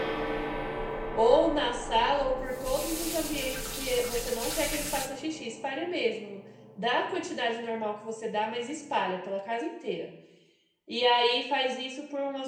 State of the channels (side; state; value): both; identical; correlation 1.00